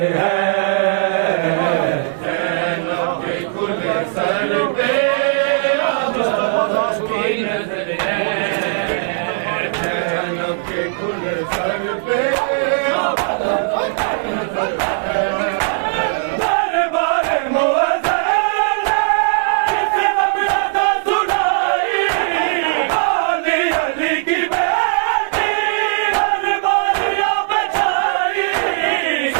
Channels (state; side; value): silent; left; digital silence